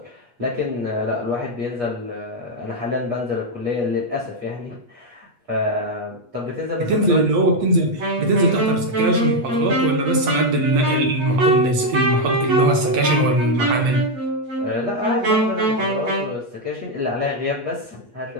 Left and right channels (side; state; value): left; late; 8.3 ms